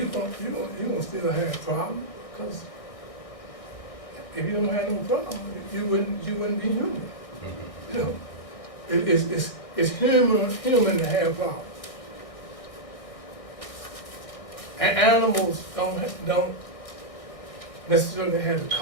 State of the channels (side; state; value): right; late; 1.6 ms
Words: gonna still have a problem, because if you don't have no problem, you wouldn't be human. It's human to have problems. And animals don't necessarily have the